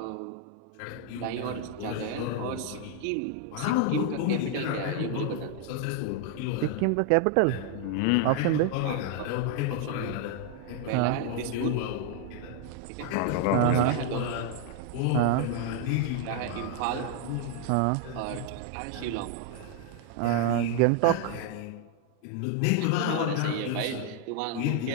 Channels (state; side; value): different; both; correlation 0.00